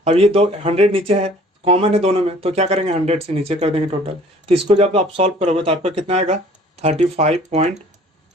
अब ये 100 नीचे है, कॉमन है दोनों में, तो क्या करेंगे 100 से नीचे कर देंगे टोटल। तो इसको जब आप सॉल्व करोगे तो आपका कितना आएगा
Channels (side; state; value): both; normal; correlation 0.53